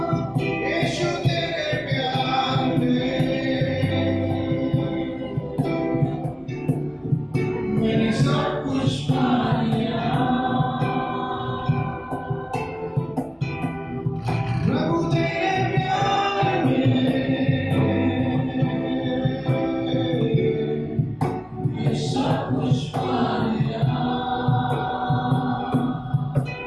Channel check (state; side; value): identical; both; correlation 1.00